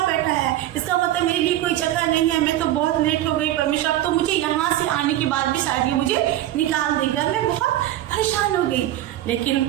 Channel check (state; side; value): quieter; left; 13.7 dB